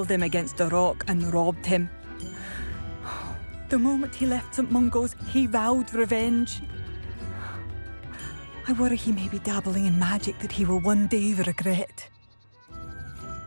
him against a rock and robbed him. The moment he left St. Mungo's, he vowed revenge. I worry he may be dabbling in magic that he will one day regret.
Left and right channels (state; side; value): inverted; both; correlation -1.00